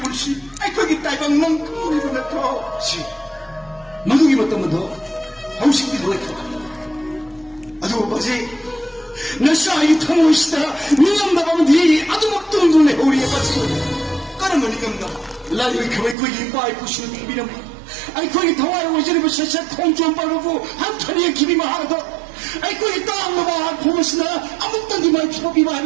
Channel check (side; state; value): left; drops out; at 16.2 s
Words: 시, 거기 딸방 넌 그물이로 넣고. 시. 마누기 봤다면 더. 하우식 비도가 있다. 아주 뭐지? 나 싸이 타모시다. 니가 나가면 니 아주 막 뚱뚱해. 우리에 빠지고. 까르면 이겁나. 라디오에 그왜 거기 빠이 부시는 비비는 아이 거기 더와요 오지르고 셔셔 통좀 빠르고 한 털이에 기비만 하나도 아이 거기 땅 먹어 보면서나 아무것도 니말 피고비만